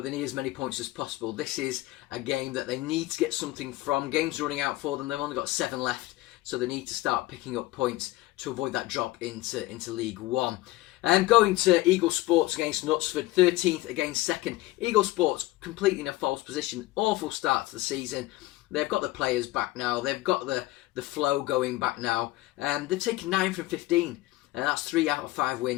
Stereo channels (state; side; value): quieter; right; 18.0 dB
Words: they need as many points as possible. This is a game that they need to get something from. Games running out for them. They've only got 7 left, so they need to start picking up points to avoid that drop into League 1. Going to Eagle Sports against Knutsford, 13th against 2nd. Eagle Sports completely in a false position. Awful start to the season. They've got the players back now. They've got the flow going back now. They've taken 9 from 15. And that's 3 out of 5